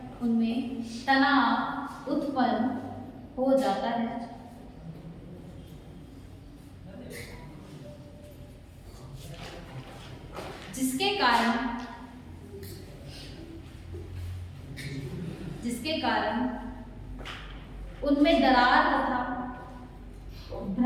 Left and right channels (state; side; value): identical; both; correlation 1.00